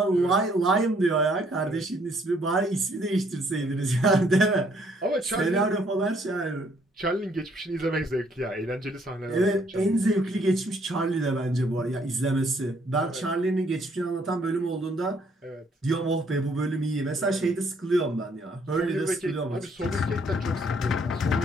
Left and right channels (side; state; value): both; normal; correlation 0.66